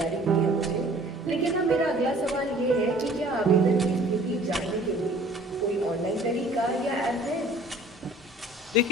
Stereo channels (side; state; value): both; normal; correlation 0.51